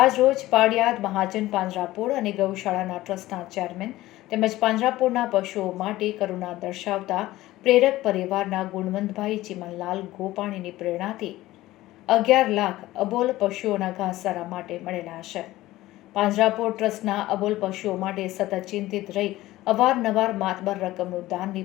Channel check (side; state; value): right; quieter; 16.7 dB